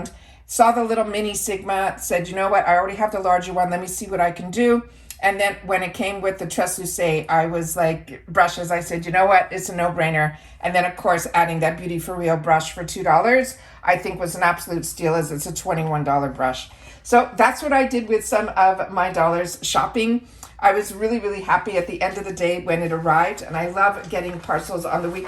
saw the little mini Sigma, said, you know what, I already have the larger one, let me see what I can do. And then when it came with the Treslúce, I was like, brushes, I said, you know what, it's a no-brainer. And then of course, adding that Beauty For Real brush for $2, I think was an absolute steal, as it's a $21 brush. So that's what I did with some of my dollars shopping. I was really, really happy at the end of the day when it arrived, and I love getting parcels on the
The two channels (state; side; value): identical; both; correlation 1.00